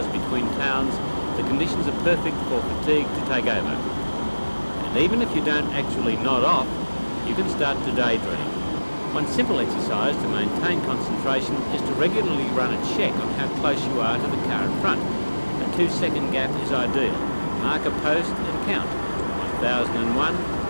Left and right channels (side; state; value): both; inverted; correlation -1.00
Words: between towns, the conditions are perfect for fatigue to take over. And even if you don't actually nod off, you can start to daydream. One simple exercise to maintain concentration is to regularly run a check on how close you are to the car in front. A 2-second gap is ideal. Mark a post and count. 1001,